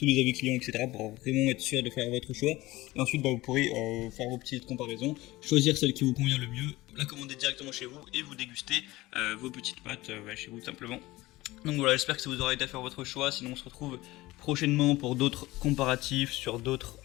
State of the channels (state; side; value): quieter; right; 19.0 dB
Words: les avis clients, etc. pour vraiment être sûr de faire votre choix. Et ensuite, vous pourrez faire vos petites comparaisons, choisir celle qui vous convient le mieux, la commander directement chez vous et vous déguster vos petites pâtes chez vous tout simplement. Donc voilà, j'espère que ça vous aura aidé à faire votre choix. Sinon on se retrouve prochainement pour d'autres comparatifs sur d'autres